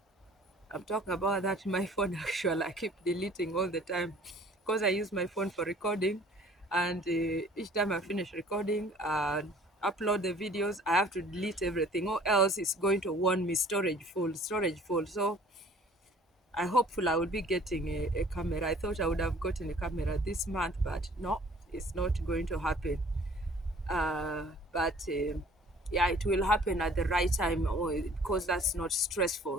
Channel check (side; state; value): both; normal; correlation 0.52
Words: I'm talking about that in my phone actually. I keep deleting all the time because I use my phone for recording, and each time I finish recording and upload the videos, I have to delete everything, or else it's going to warn me storage full, storage full. So I hopeful I will be getting a camera. I thought I would have gotten a camera this month, but no, it's not going to happen. But yeah, it will happen at the right time, because that's not